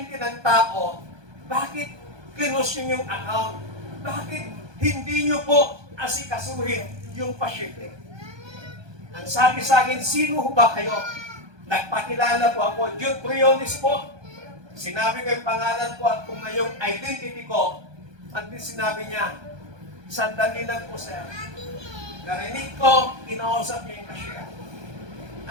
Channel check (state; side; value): late; left; 1.2 ms